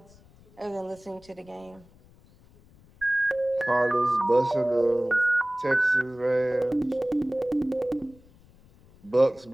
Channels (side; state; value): left; noise; rumble, 27 dB below the sound